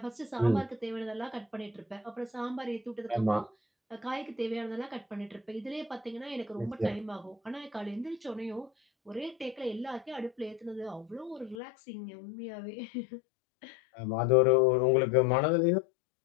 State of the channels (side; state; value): right; drops out; at 11.6 s